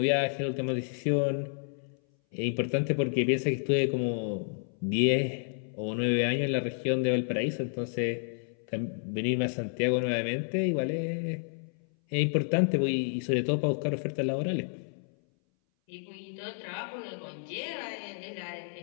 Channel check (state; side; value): silent; right; 58 dB below the other